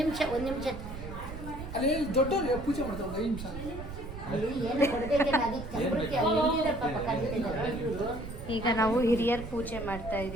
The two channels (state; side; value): noise; right; rumble, 10 dB below the sound